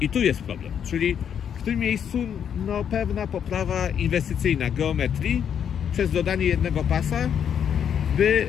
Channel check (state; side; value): quieter; right; 8.4 dB